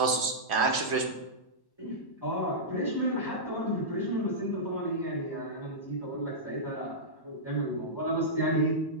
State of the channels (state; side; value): late; right; 1.1 ms